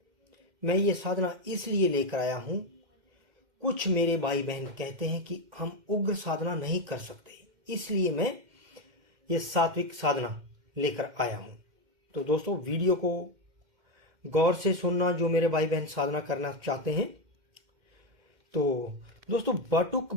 मैं ये साधना इसलिए लेकर आया हूं, कुछ मेरे भाई बहन कहते हैं कि हम उग्र साधना नहीं कर सकते, इसलिए मैं ये सात्विक साधना लेकर आया हूं। तो दोस्तों, वीडियो को गौर से सुनना जो मेरे भाई बहन साधना करना चाहते हैं। तो दोस्तों, बटुक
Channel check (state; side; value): late; left; 2.1 ms